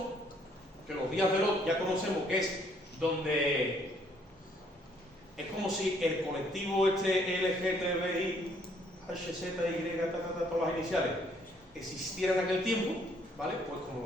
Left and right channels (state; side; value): normal; both; correlation 0.66